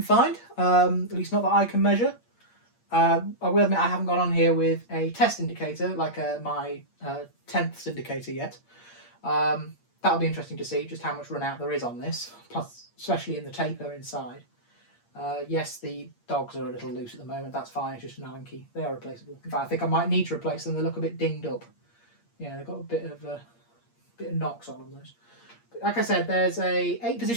find, at least not that I can measure. I will admit I haven't gone on here with a test indicator, like my 10th indicator yet. That'll be interesting to see just how much run out there is on this, plus especially in the taper inside. Yes, the dogs are a little loose at the moment, that's fine, it's just an Allen key. They are replaceable. In fact, I think I might need to replace them, they look a bit dinged up. Yeah, they've got a bit of knocks on them, those. But like I said, there's a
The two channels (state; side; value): late; right; 8.6 ms